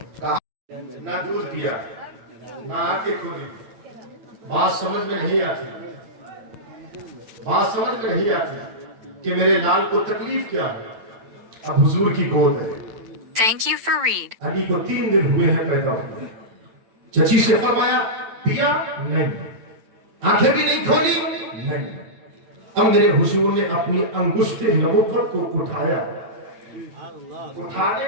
کہا نہ دودھ پیا نہ آنکھیں کھولی۔ بات سمجھ میں نہیں آتی، بات سمجھ میں نہیں آتی کہ میرے لال کو تکلیف کیا ہے۔ اب حضور کی گود ہے، Thank you for read. علی کو 3 دن ہوئے ہیں پیدا ہوئے۔ چچی سے فرمایا پیا نہیں، آنکھیں بھی نہیں کھولی نہیں۔ اب میرے حضور نے اپنی انگشت نبوت کو اٹھایا، اٹھانے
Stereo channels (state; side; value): late; left; 8.9 ms